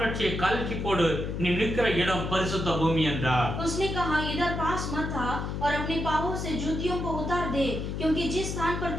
கழற்றி போடு, நீ நிற்கிற இடம் பரிசுத்த பூமி என்றார். उसने कहा, इधर पास मत आ और अपने पांवों से जूतियों को उतार दे, क्योंकि जिस स्थान पर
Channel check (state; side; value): noise; left; hum, 4 dB below the sound